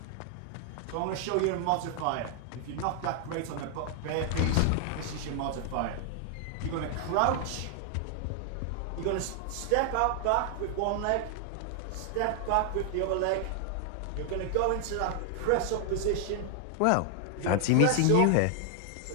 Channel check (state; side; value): different; both; correlation 0.00